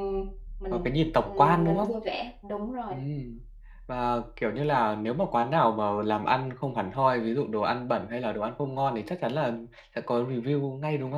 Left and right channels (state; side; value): identical; both; correlation 1.00